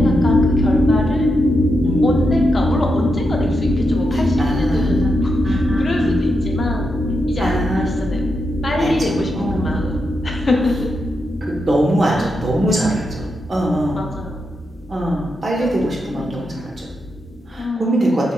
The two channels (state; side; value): normal; both; correlation 0.85